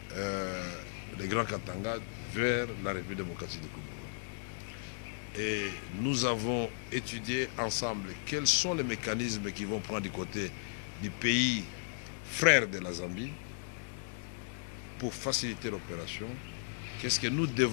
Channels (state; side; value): silent; right; digital silence